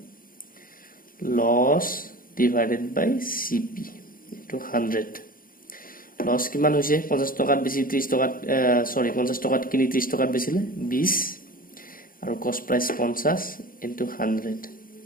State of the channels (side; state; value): right; late; 0.41 ms